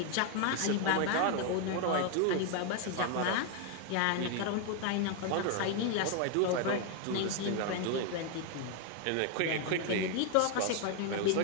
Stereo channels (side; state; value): both; different; correlation 0.01